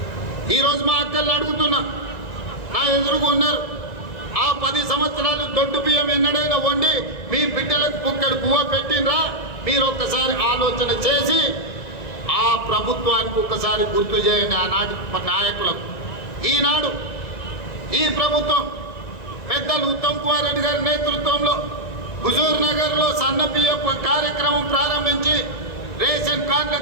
ఈరోజు మా అక్కలు అడుగుతున్నా, నా ఎదురుగా ఉన్నారు, ఆ 10 సంవత్సరాలు దొడ్డు బియ్యం ఎన్నడైనా వండి మీ బిడ్డలకు పుక్కడు పువ్వ పెట్టినరా? మీరు ఒక్కసారి ఆలోచన చేసి ఆ ప్రభుత్వానికి ఒక్కసారి గుర్తు చేయండి, ఆనాటి నాయకులకు. ఈనాడు ఈ ప్రభుత్వం పెద్దలు ఉత్తమ్ కుమార్ రెడ్డి గారి నేతృత్వంలో హుజూర్ నగర్లో సన్న బియ్యం కార్యక్రమం ప్రారంభించి రేషన్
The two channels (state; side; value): late; right; 1.9 ms